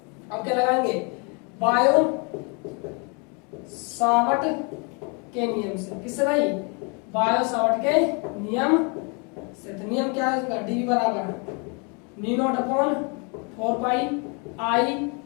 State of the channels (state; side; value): quieter; right; 34.0 dB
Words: अब क्या लगाएंगे, बायो सावर्ट के नियम से, किससे भाई, बायो सावर्ट के नियम से। तो नियम क्या है इसका, डीवी बराबर new not upon 4 pi I